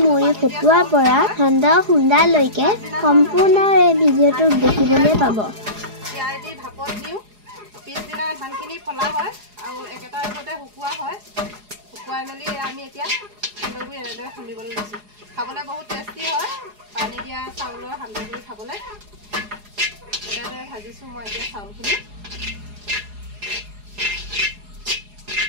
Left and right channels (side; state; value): left; late; 4.8 ms